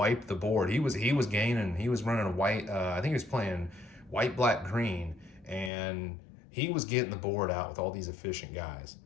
the board. He was gaining. He was running a white. I think he was playing white, black, green, and he was getting the board out with all these efficient guys.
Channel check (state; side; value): drops out; right; at 5.7 s